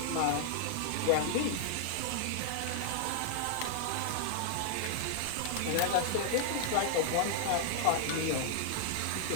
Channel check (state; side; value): different; both; correlation -0.01